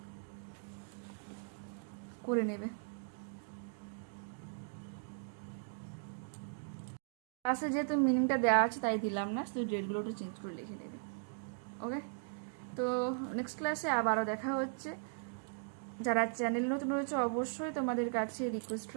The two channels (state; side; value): silent; left; digital silence